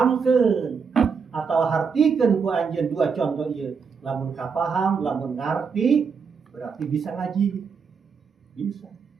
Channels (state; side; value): quieter; left; 5.8 dB